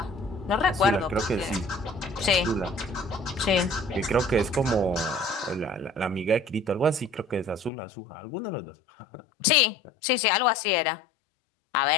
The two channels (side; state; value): right; drops out; at 7.7 s